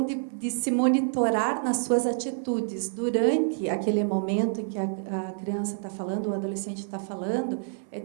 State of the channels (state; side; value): silent; left; digital silence